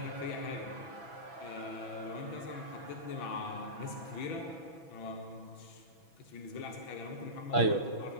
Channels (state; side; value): late; right; 6.1 ms